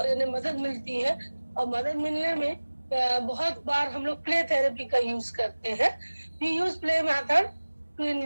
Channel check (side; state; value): both; inverted; correlation -1.00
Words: मदद मिलती है, और मदद मिलने में बहुत बार हम लोग प्ले थेरेपी का यूज करते हैं. We use play method to